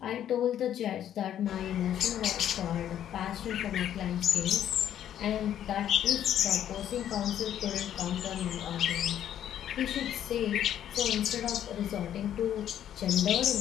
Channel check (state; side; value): quieter; right; 10.6 dB